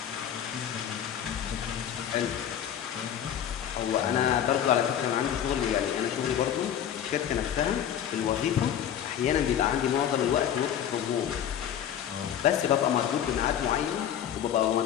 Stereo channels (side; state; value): right; quieter; 9.7 dB